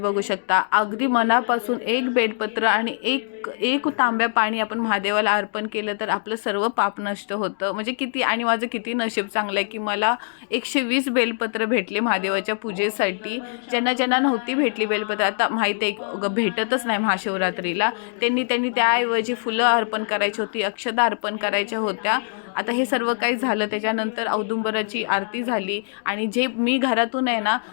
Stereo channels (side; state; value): right; silent; digital silence